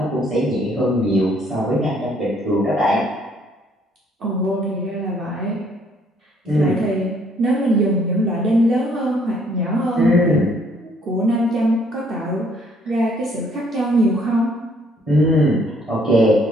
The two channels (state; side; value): normal; both; correlation 0.64